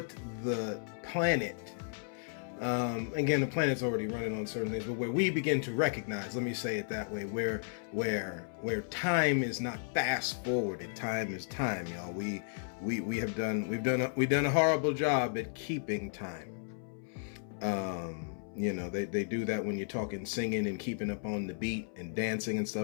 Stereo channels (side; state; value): right; silent; 55 dB below the other